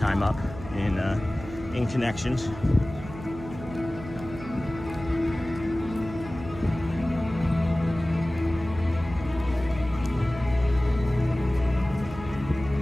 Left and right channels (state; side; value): noise; right; hum, 13 dB below the sound